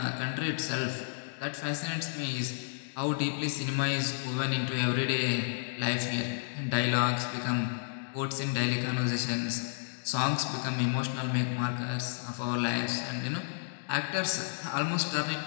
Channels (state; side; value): silent; right; digital silence